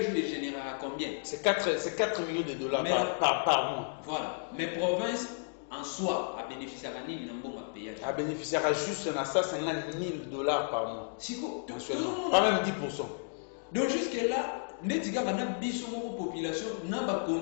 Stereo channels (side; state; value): right; silent; digital silence